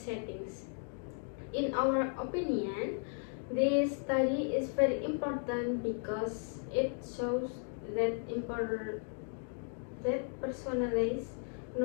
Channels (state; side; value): silent; right; 54 dB below the other